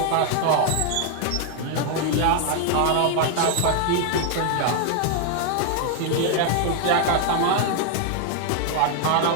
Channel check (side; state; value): both; different; correlation 0.00